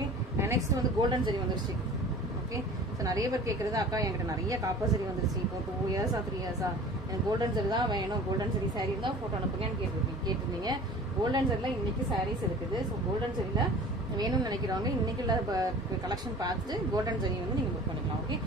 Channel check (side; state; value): both; normal; correlation 0.43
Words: நெக்ஸ்ட் வந்து கோல்டன் ஜெரி வந்துருச்சு. ஓகே, ஸோ நிறைய பேர் கேட்கறது, அக்கா என்கிட்ட நிறைய காப்பர் சரி வந்துருச்சு, இப்போ 2 years 3 years எனக்கு கோல்டன் சரி தான் வேணும், கோல்டன் சரி சாரி இருந்தால் ஃபோட்டோ அனுப்புங்கன்னு கேட்டிருந்தீங்க. கோல்டன் சரியில் இன்னைக்கு சாரீஸ் இருக்குது. ஸோ கோல்டன் சரியில் வேணும்னு நினைக்கிறவங்க இன்னைக்கு உள்ள கலெக்ஷன் பார்த்துட்டு கோல்டன் ஜெரி வந்து நீங்க புக் பண்ணிக்கலாம். ஓகே,